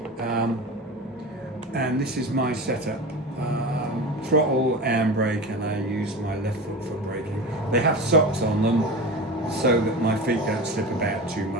And this is my setup. Throttle, handbrake, and I use my left foot for braking. They have socks on them so that my feet don't slip about too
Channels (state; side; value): normal; both; correlation 0.29